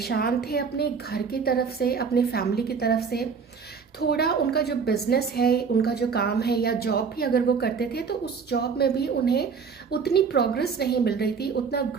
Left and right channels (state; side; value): quieter; left; 5.8 dB